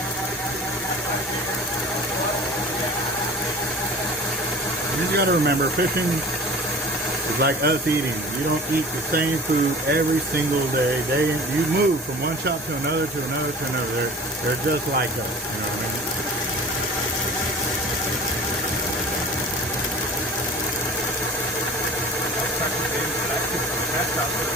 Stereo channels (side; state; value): both; normal; correlation 0.41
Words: You just gotta remember, fishing is like us eating. You don't eat the same food every single day. You move from one shop to another to another to another. They're just like us. You know what I mean?